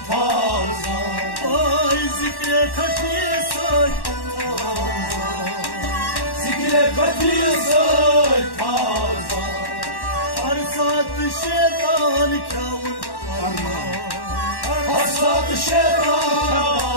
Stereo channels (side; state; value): right; late; 1.1 ms